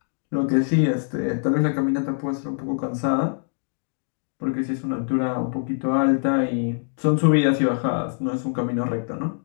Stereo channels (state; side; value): silent; right; digital silence